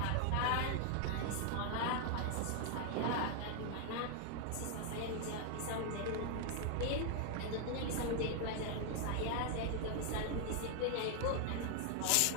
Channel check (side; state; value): both; different; correlation 0.00